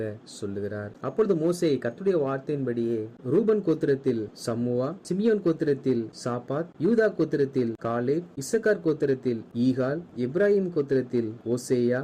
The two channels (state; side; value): identical; both; correlation 1.00